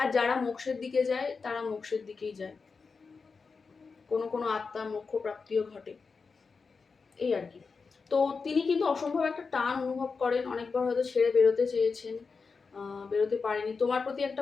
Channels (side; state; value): right; quieter; 4.8 dB